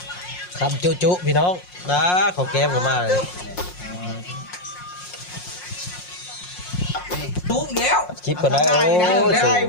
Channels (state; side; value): late; right; 5.6 ms